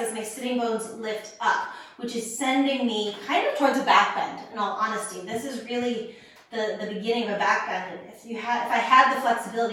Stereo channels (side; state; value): both; identical; correlation 1.00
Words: my sitting bones lift up, which is sending me kind of towards a back bend, in all honesty. This is really the beginning of a back bend. If I had the